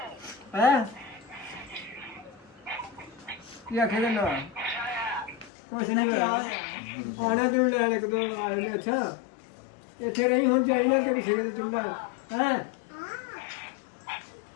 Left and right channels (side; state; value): right; drops out; at 5.5 s